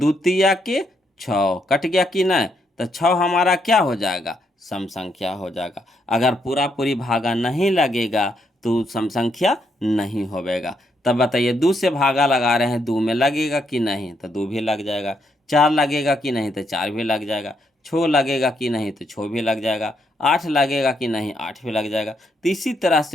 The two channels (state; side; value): normal; both; correlation 0.76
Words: तिया के 6 कट गया कि नहीं। तो 6 हमारा क्या हो जाएगा, सम संख्या हो जाएगा। अगर पूरा पूरी भागा नहीं लगेगा तो सम संख्या नहीं होवेगा। तब बताइए 2 से भागा लगा रहे हैं, 2 में लगेगा कि नहीं, तो 2 भी लग जाएगा। 4 लगेगा कि नहीं, तो 4 भी लग जाएगा। 6 लगेगा कि नहीं, तो 6 भी लग जाएगा। 8 लगेगा कि नहीं, 8 भी लग जाएगा। तो इसी तरह